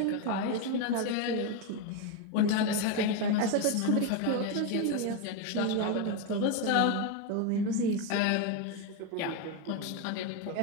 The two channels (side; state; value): both; different; correlation 0.02